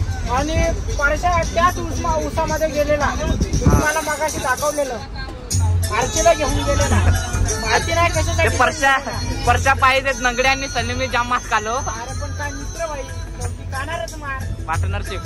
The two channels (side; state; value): both; identical; correlation 1.00